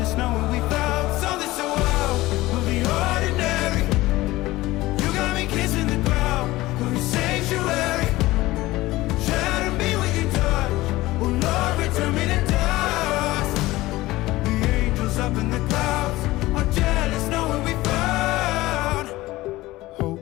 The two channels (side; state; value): right; quieter; 18.3 dB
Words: knowing we found something so wild. We'll be ordinary. You got me kissing the ground. We'll be sanctuary. Shatter me with your touch. Oh Lord, return me to dust. The angels up in the clouds are jealous knowing we found